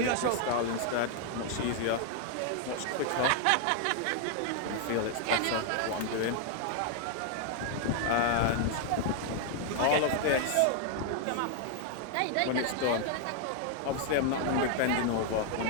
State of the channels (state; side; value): different; both; correlation 0.00